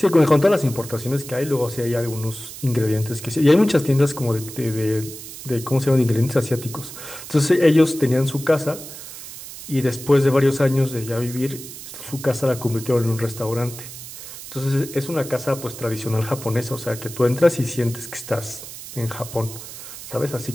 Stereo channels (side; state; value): right; noise; hiss, 13 dB below the sound